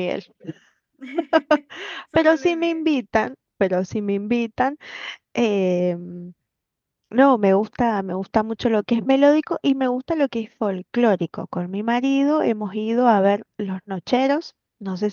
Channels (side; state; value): both; identical; correlation 1.00